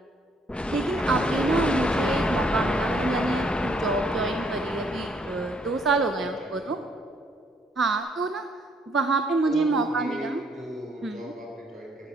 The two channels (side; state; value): both; normal; correlation 0.68